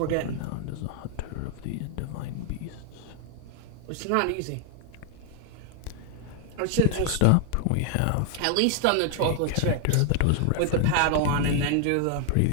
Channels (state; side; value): different; both; correlation 0.00